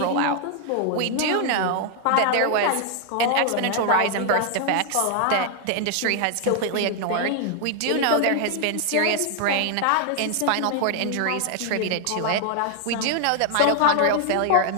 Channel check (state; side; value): different; both; correlation 0.00